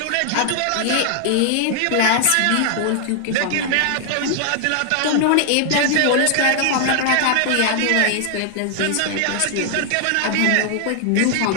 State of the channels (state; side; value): different; both; correlation 0.00